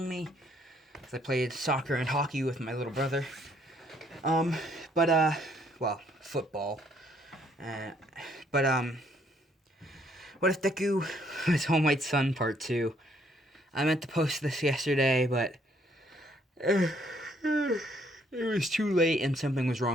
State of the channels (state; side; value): normal; both; correlation 0.67